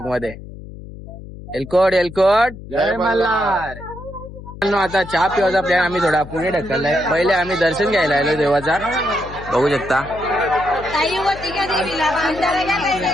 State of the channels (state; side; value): noise; left; hum, 14 dB below the sound